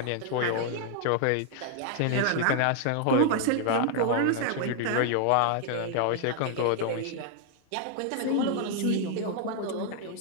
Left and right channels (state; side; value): different; both; correlation 0.00